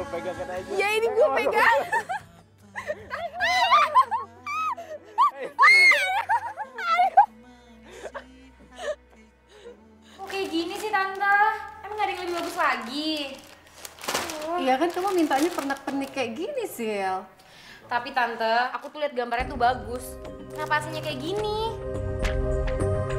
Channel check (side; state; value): both; identical; correlation 1.00